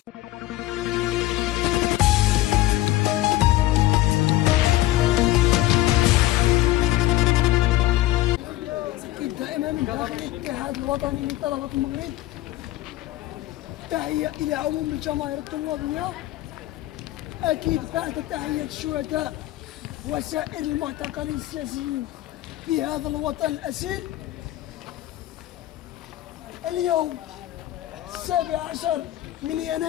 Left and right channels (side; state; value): right; quieter; 16.1 dB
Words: دائما من داخل الاتحاد الوطني لطلبة المغرب تحية إلى عموم الجماهير الطلابية، أكيد بعد تحية الشهداء وسائر المعتقلين السياسيين في هذا الوطن الأسير. اليوم 17 من